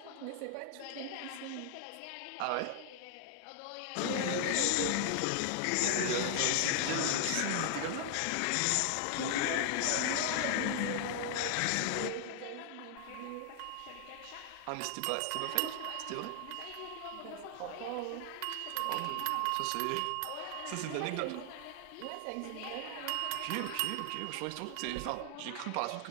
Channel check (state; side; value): different; both; correlation 0.00